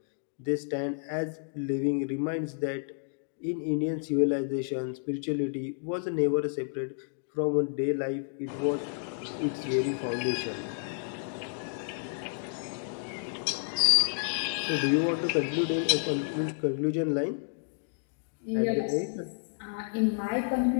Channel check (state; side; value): silent; right; digital silence